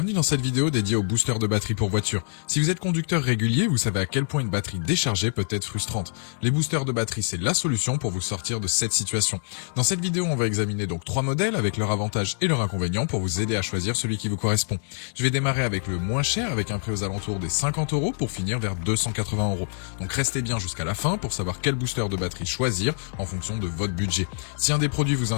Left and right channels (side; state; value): right; silent; digital silence